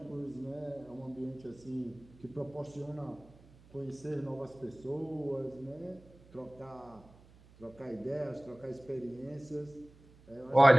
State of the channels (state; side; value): noise; right; hum, 24 dB below the sound